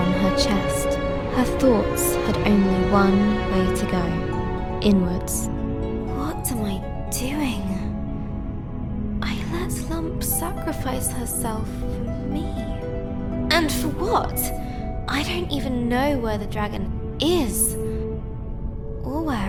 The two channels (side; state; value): both; identical; correlation 1.00